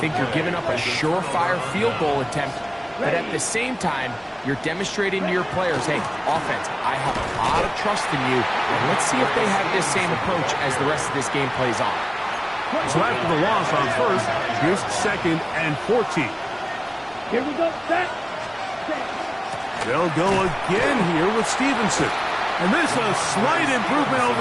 think you're giving up a surefire field goal attempt, but at the same time, you're demonstrating to your players, hey, offense, I have a lot of trust in you, and let's see if they have this same approach as the rest of this game plays on. So after the loss on 1st, here's 2nd and 14. Here we go, set. They'll go again here with Stevenson. And this is a slight improvement over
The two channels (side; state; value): both; identical; correlation 1.00